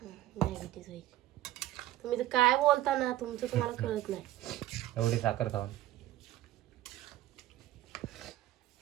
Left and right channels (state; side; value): quieter; left; 14.8 dB